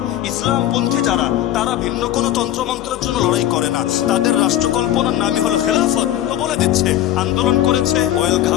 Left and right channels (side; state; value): right; quieter; 12.7 dB